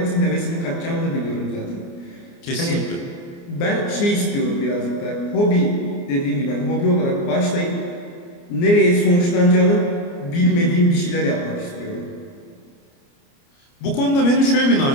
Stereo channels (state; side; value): late; right; 29 ms